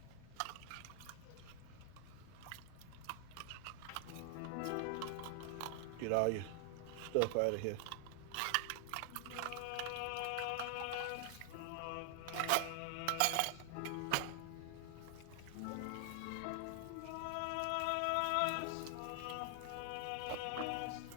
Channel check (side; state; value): both; different; correlation 0.00